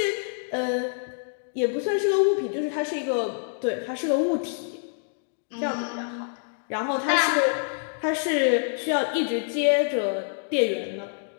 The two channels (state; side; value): silent; right; digital silence